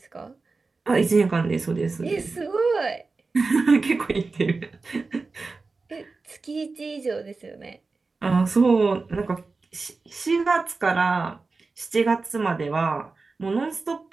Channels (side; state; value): left; quieter; 4.0 dB